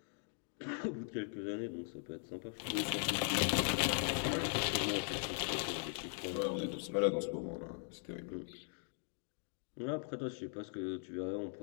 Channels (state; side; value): silent; right; 51 dB below the other